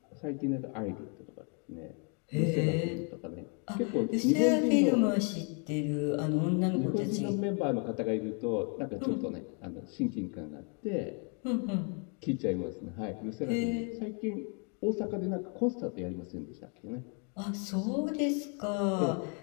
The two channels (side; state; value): right; quieter; 36.8 dB